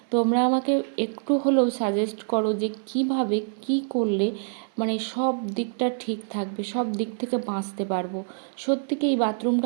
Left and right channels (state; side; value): silent; left; digital silence